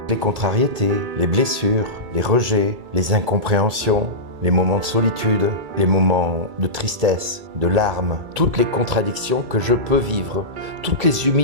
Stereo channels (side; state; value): left; late; 2.3 ms